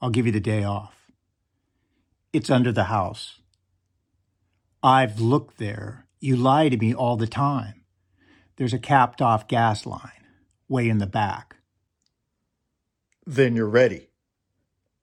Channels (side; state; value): both; identical; correlation 1.00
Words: give you the day off. It's under the house. I've looked there. You lie to me all the time. There's a capped off gas line, way in the back. Then you're ready.